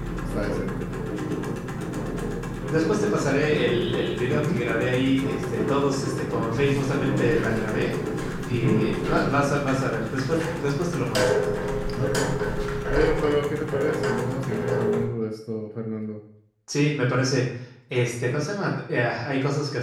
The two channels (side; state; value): both; identical; correlation 1.00